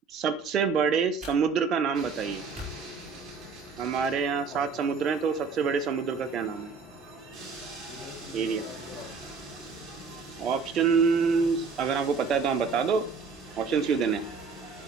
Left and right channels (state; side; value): quieter; left; 5.2 dB